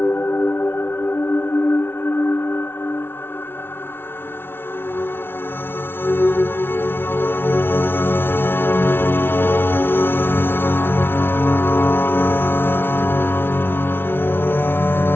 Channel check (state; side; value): late; right; 0.11 ms